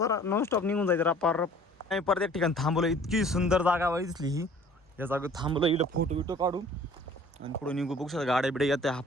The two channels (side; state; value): both; normal; correlation 0.51